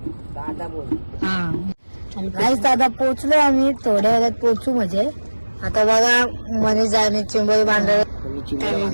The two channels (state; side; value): inverted; both; correlation -1.00